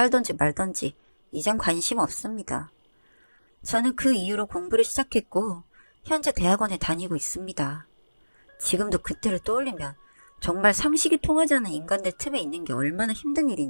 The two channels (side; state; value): both; inverted; correlation -1.00